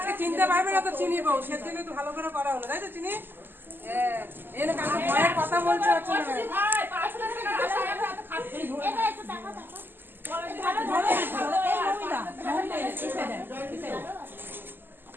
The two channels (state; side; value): late; left; 0.095 ms